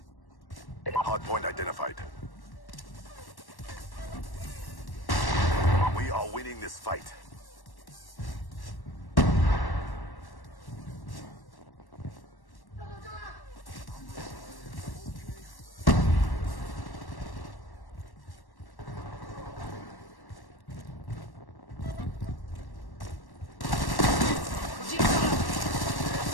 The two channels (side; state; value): right; late; 1.1 ms